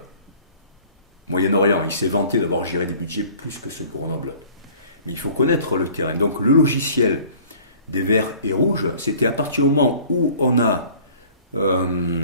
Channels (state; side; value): inverted; both; correlation -0.49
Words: Moyen-Orient. Il s'est vanté d'avoir géré des budgets plus que ceux de Grenoble. Mais il faut connaître le terrain. Donc le logiciel des verts et rouges, c'était à partir du moment où on a